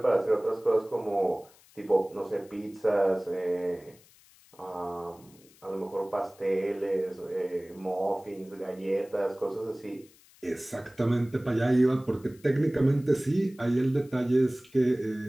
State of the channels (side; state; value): left; noise; hiss, 27 dB below the sound